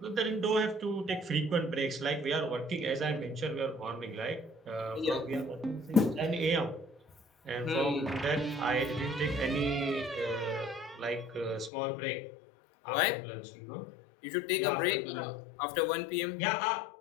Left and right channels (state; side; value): drops out; right; at 11.7 s